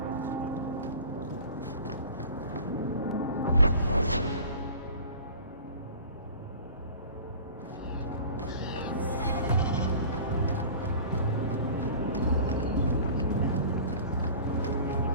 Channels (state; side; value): inverted; both; correlation -0.42